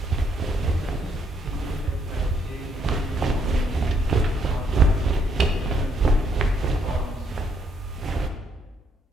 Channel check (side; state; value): both; normal; correlation 0.72